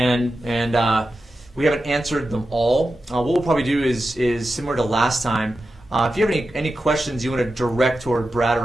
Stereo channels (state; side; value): normal; both; correlation 0.91